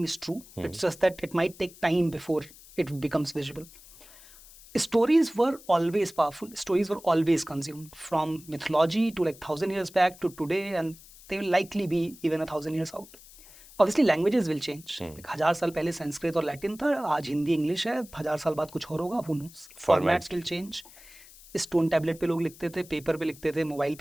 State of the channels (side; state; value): left; noise; hiss, 21 dB below the sound